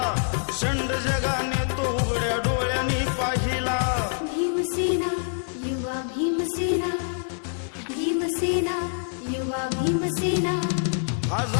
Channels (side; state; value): right; silent; digital silence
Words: शंड जगाने तो उघड्या डोळ्यांनी पाहिला भीमसेना युवा भीमसेना भीमसेना युवा भीमसेना